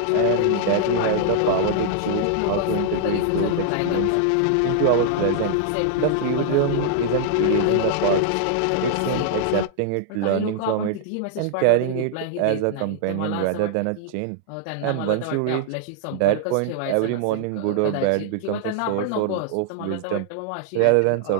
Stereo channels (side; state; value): both; different; correlation -0.01